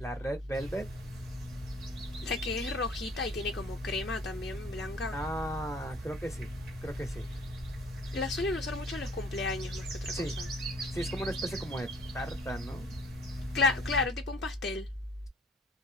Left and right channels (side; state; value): both; normal; correlation 0.55